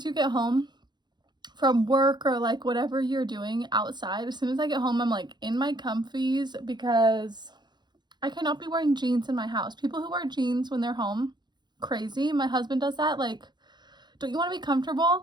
you get home from work or like whatever you're doing outside, as soon as I get home, I'm like in my comfies because I cannot be wearing jeans in my house. People who wear jeans when they're home, crazy. My husband does that. Like, don't you want to be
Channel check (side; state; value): left; late; 0.21 ms